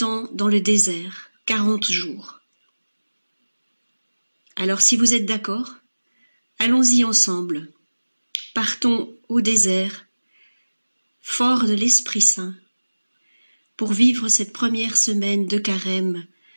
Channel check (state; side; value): inverted; both; correlation -1.00